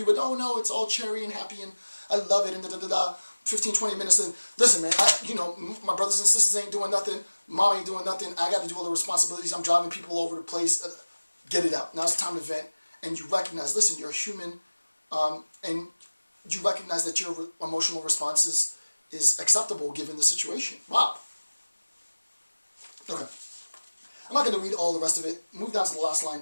with, oh, no, it's all cherry and happy, and I love it, and da-da-da-da. 15, 20 minutes, and listen, man, my brothers and sisters ain't doing nothing, mom ain't doing nothing, I got to do all the responsibilities, I'm driving people over the place, get it out. Now it's time to vent, and you recognize, listen, you're a human, and you recognize that your emotional response is acceptable given the situation. Wow. Okay. I'm not going to read all the rest of it. Move down to the last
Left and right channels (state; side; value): inverted; both; correlation -1.00